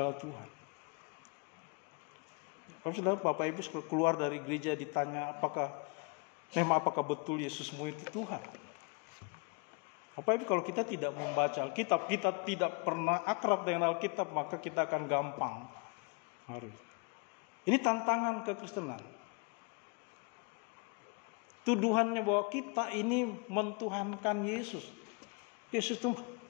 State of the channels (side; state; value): right; quieter; 31.3 dB